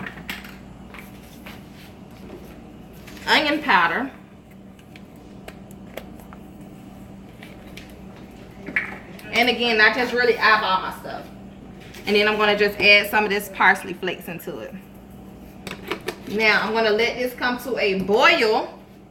Onion powder. And again, I just really eyeball my stuff. And then I'm going to just add some of this parsley flakes into it. Now, I'm going to let this come to a boil.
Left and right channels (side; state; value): both; identical; correlation 1.00